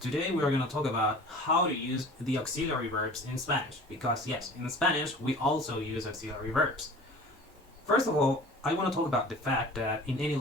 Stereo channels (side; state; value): both; normal; correlation 0.43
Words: we are going to talk about how to use the auxiliary verbs in Spanish, because yes, in Spanish we also use auxiliary verbs. First of all, I want to talk about the fact that in any